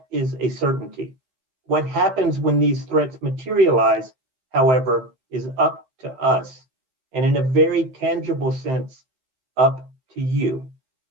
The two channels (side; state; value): left; late; 15 ms